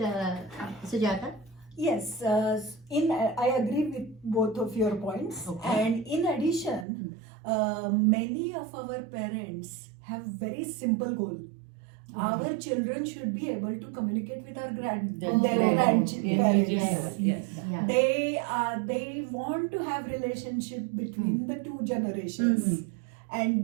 Sujata? Yes, I agree with both of your points. Okay. And in addition, many of our parents have very simple goal. Our children should be able to communicate with our their Indigenous grandparents. yes. Yeah. They want to have relationship between the two generations,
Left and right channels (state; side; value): drops out; left; at 6.9 s